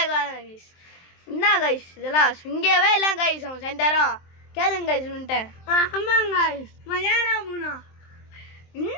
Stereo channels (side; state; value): right; late; 23 ms